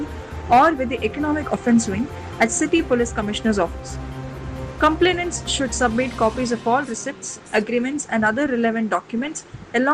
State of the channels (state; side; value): identical; both; correlation 1.00